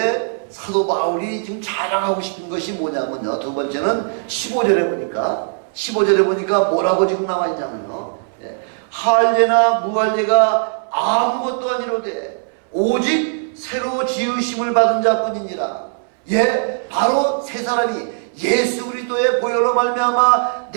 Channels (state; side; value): silent; left; 62 dB below the other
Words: 사도 바울이 지금 자랑하고 싶은 것이 뭐냐면요. 두 번째는 15절에 보니까 뭐라고 지금 나와 있냐면요. 할례나 무할례가 아무것도 아니로되 오직 새로 지으심을 받은 자뿐이니라. 바로 새 사람이 예수 그리스도의 보혈로 말미암아